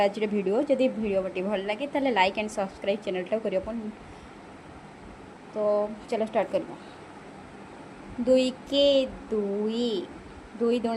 आज वीडियो। जदि वीडियो टी भल लगे ताले लाइक एंड सब्सक्राइब चैनल टा करियो। तो चलो स्टार्ट करवा। 2 के 2 2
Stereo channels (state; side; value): identical; both; correlation 1.00